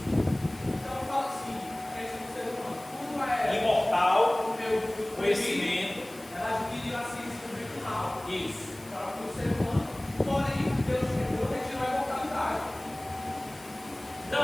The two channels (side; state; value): left; noise; hiss, 21 dB below the sound